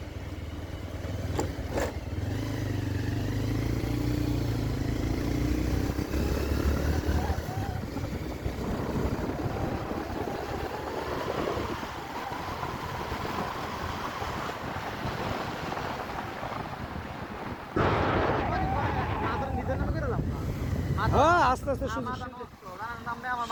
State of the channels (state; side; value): identical; both; correlation 1.00